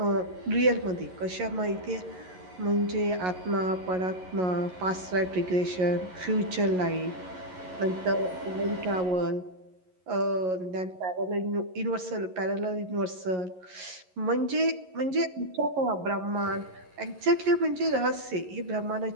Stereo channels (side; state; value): left; late; 11 ms